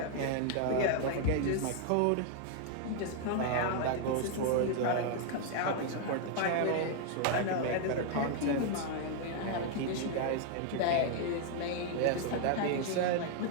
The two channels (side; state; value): both; different; correlation 0.00